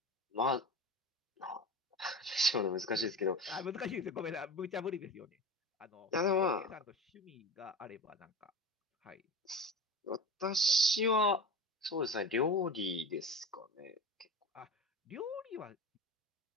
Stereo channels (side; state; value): both; normal; correlation 0.31